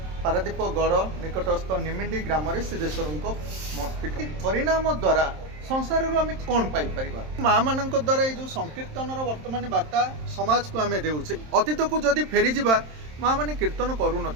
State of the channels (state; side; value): late; left; 27 ms